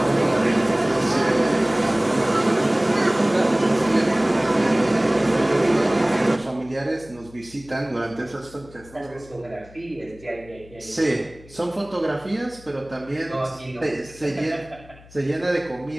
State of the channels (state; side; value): noise; left; hum, 23 dB below the sound